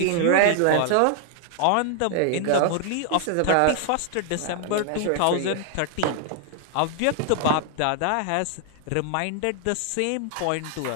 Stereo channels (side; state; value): both; different; correlation 0.00